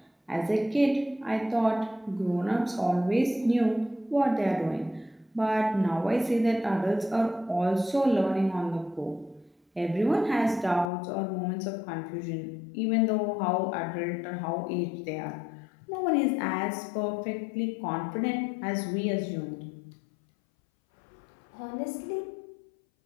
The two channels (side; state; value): right; drops out; at 10.9 s